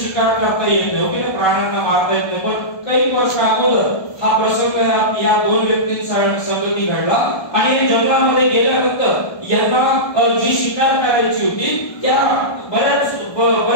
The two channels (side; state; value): right; late; 1.2 ms